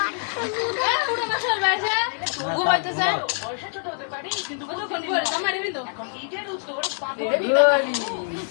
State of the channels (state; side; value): silent; right; digital silence